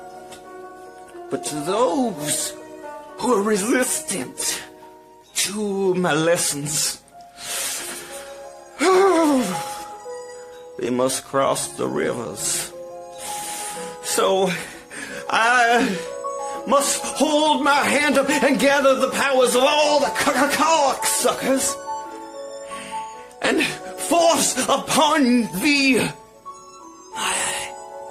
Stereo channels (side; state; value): both; identical; correlation 1.00